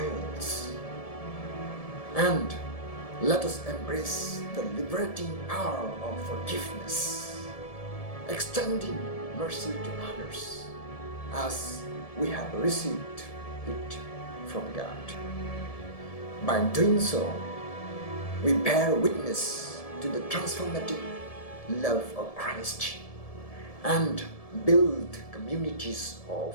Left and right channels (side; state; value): right; late; 1.7 ms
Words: And let us embrace the liberating power of forgiveness, extending mercy to others as we have received it from God. By doing so, we bear witness to the transformative love of Christ and build communities